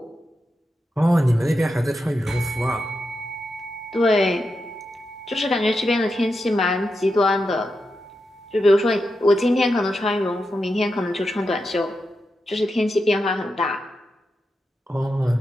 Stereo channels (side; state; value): both; normal; correlation 0.87